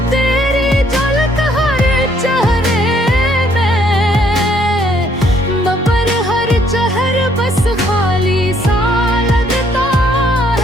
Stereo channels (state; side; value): normal; both; correlation 0.66